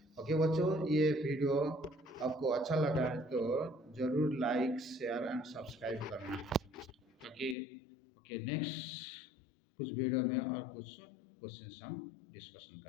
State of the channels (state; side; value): drops out; right; at 7.6 s